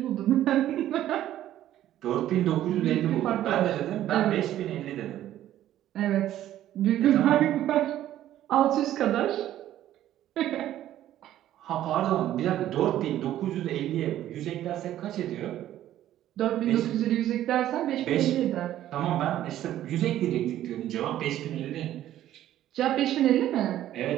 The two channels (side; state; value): left; quieter; 12.7 dB